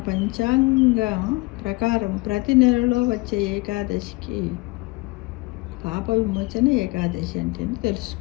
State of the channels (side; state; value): right; quieter; 24.3 dB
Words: పంచాంగం ప్రకారం ప్రతి నెలలో వచ్చే ఏకాదశికి పాప విమోచన ఏకాదశి అంటే